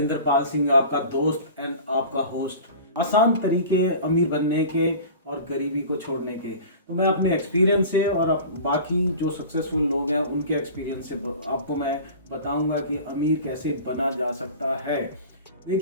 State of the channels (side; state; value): both; inverted; correlation -0.39